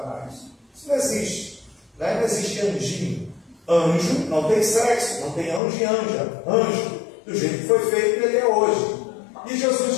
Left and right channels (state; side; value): drops out; right; at 5.6 s